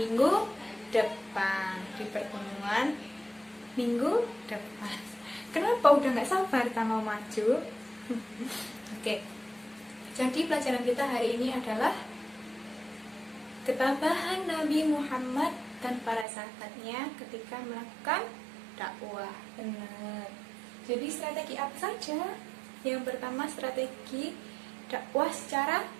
depan, di pertemuan minggu depan. Kenapa udah nggak sabar kita mau maju? Oke. Jadi pelajaran kita hari ini adalah ketabahan Nabi Muhammad dan para sahabatnya ketika melakukan dakwah. Benar. Jadi strategi apa saja? Yang pertama strategi dakwah secara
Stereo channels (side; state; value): left; drops out; at 16.2 s